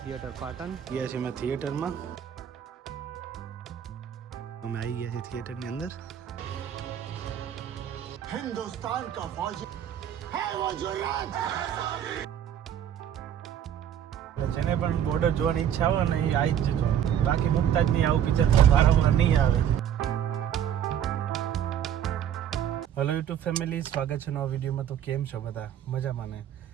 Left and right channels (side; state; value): left; quieter; 9.8 dB